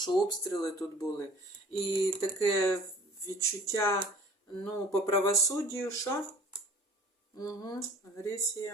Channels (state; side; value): normal; both; correlation 0.48